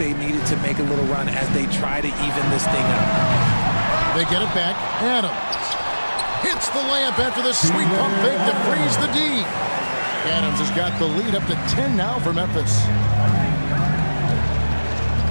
needed to make a little run as they try to even this thing up. They get it back. Adams hits the layup after the sweet pump fake to freeze the D. Adams has got the lead up to 10 now for Memphis.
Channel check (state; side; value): inverted; both; correlation -1.00